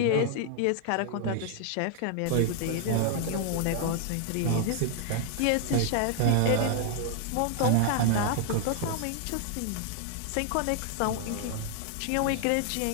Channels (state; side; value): different; both; correlation 0.00